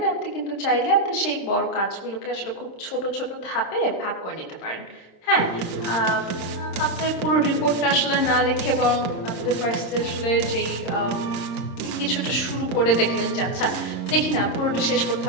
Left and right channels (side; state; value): right; late; 26 ms